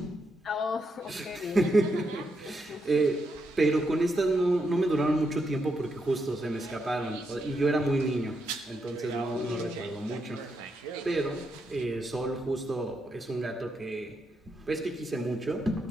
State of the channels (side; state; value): both; normal; correlation 0.81